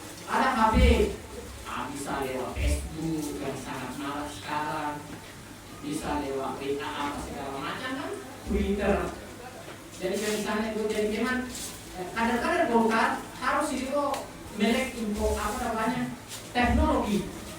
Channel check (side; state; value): both; identical; correlation 1.00